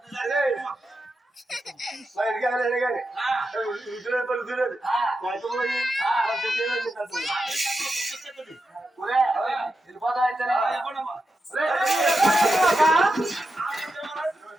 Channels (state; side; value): normal; both; correlation 0.88